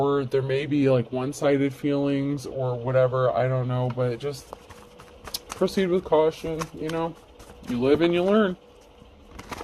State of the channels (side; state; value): both; identical; correlation 1.00